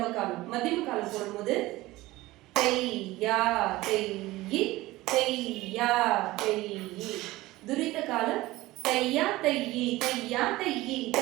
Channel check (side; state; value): left; quieter; 18.5 dB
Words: காலம். மத்தியம காலம் போடும்போது தை யா தை இ தை யா தை இ. துரித காலம் தையா தையி தையா தையி